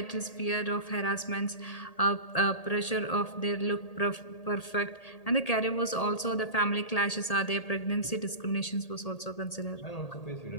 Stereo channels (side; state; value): right; late; 1.8 ms